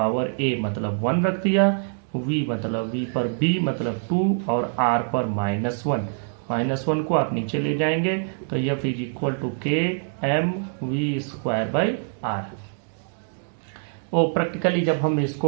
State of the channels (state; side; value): silent; left; digital silence